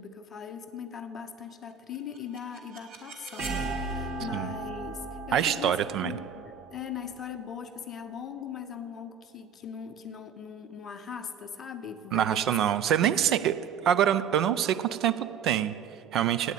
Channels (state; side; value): quieter; left; 7.0 dB